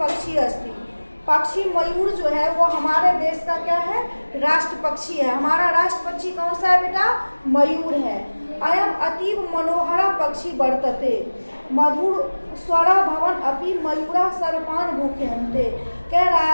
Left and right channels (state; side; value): inverted; both; correlation -1.00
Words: अस्ति। पक्षी मयूर जो है वो हमारे देश का क्या है, राष्ट्र पक्षी है। हमारा राष्ट्र पक्षी कौन सा है बेटा, मयूर है। अयम अतीव मनोहरा पक्षी वर्तते मधुर स्वरा भवन अपि मयूरा सर्पान भूख्यन्ते। कह रहा